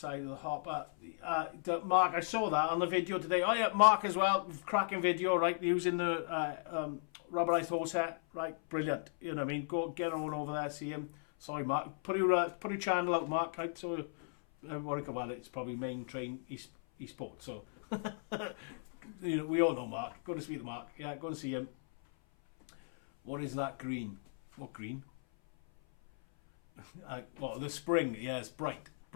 of the hopper. Mark, I saw that on the video today. Oh yeah, Mark as well. Cracking video, right? Using the rubberized hose set, right? Brilliant. You know what I mean? Go get on over there, see him. Sorry, Mark. Put your channel out, Mark. Right? So what I call it? It's probably main train eSport. So you know, we all know Mark. Go to see the Mark. Yeah, go and see him. What is that green? What green? Well, the spring, yeah, it's bright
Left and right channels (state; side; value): silent; right; 54 dB below the other